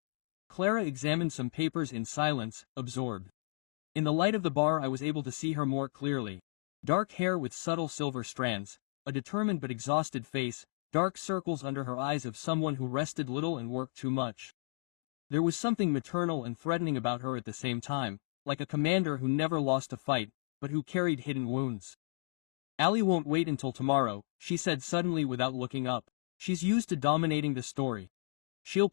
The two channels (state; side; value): silent; right; digital silence